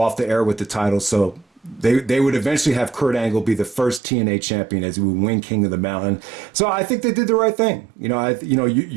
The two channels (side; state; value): left; drops out; at 4.0 s